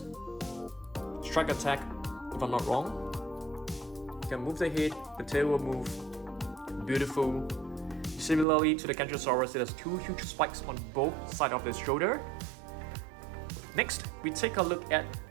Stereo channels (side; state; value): left; drops out; at 8.5 s